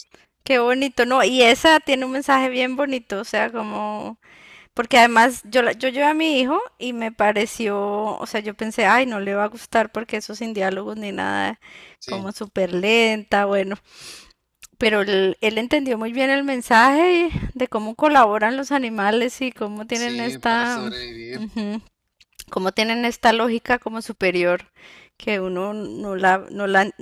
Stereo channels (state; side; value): identical; both; correlation 1.00